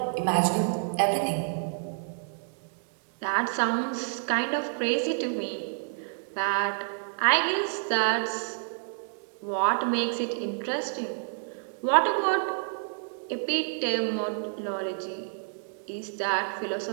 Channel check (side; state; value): left; silent; digital silence